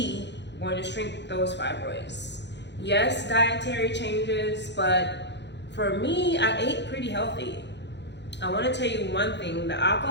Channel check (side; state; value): right; late; 0.51 ms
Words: going to shrink those fibroids. Yes, dietary changes, but for me, I ate pretty healthy. I wanna tell you one thing, the